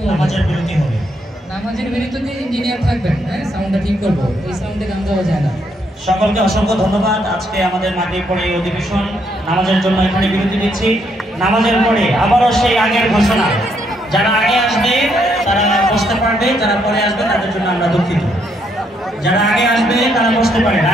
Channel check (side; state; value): both; normal; correlation 0.74